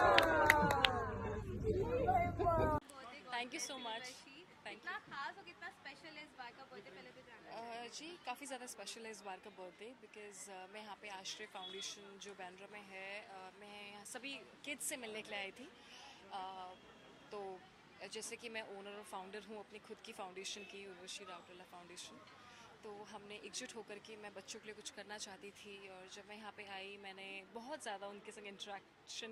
thank you so much. Thank कितना खास और कितना स्पेशल है इस बार का बर्थडे, पहले तो जानना यू जी, काफ़ी ज़्यादा स्पेशल है इस बार का बर्थडे बिकॉज़ मैं यहाँ पे आश्रय फाउंडेशन जो बैंड्रा में है, मैं यहाँ सभी किड्स से मिलने के लिए आई थी। तो जैसे कि मैं ओनर और फाउंडर हूँ अपनी खुद की फाउंडेशन की, उर्वशी राउटेला फाउंडेशन। तो हमने एकजुट होकर के मैं बच्चों के लिए कुछ करना चाहती थी, और जब मैं यहाँ पे आई मैंने बहुत ज़्यादा उनके संग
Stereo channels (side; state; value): both; identical; correlation 1.00